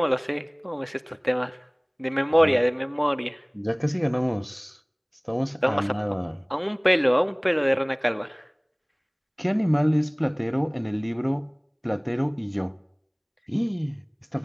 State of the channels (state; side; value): identical; both; correlation 1.00